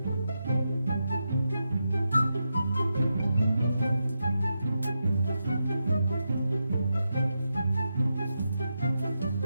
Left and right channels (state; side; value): inverted; both; correlation -0.87